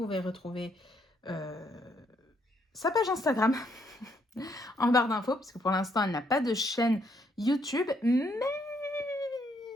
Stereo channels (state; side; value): normal; both; correlation 0.72